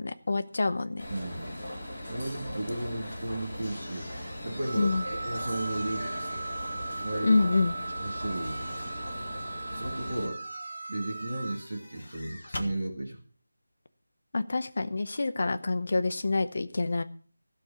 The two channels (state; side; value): inverted; both; correlation -0.95